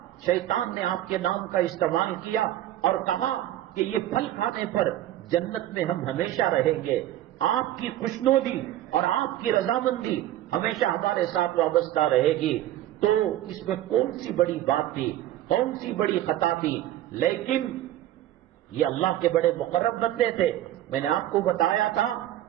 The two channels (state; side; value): quieter; left; 13.3 dB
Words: شیطان نے آپ کے نام کا استعمال کیا اور کہا کہ یہ پھل کھانے پر جنت میں ہم ہمیشہ رہیں گے، آپ کی خوشنودی اور آپ کی رضامندی ہمیشہ ہمارے ساتھ وابستہ رہے گی، تو اس میں کون سی بڑی بات تھی، کون سی بڑی خطا تھی؟ لیکن یہ اللہ کے بڑے مقرب بندے تھے۔ میں نے آپ کو بتایا تھا